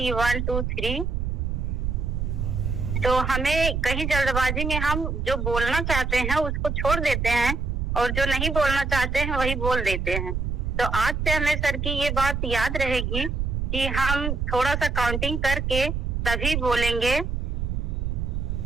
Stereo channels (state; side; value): noise; right; rumble, 1 dB below the sound